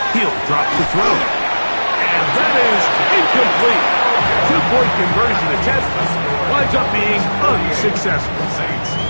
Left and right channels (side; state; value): both; inverted; correlation -1.00